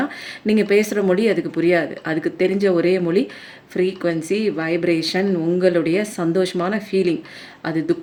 நீங்கள் பேசுகிற மொழி அதுக்கு புரியாது. அதுக்கு தெரிஞ்ச ஒரே மொழி ஃப்ரீக்வன்சி, வைப்ரேஷன், உங்களுடைய சந்தோஷமான ஃபீலிங். அது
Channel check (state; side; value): identical; both; correlation 1.00